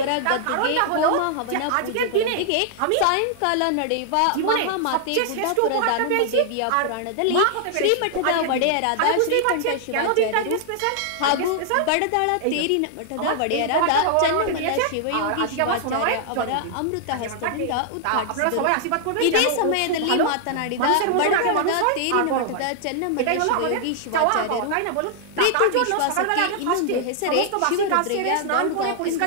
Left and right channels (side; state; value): both; different; correlation -0.01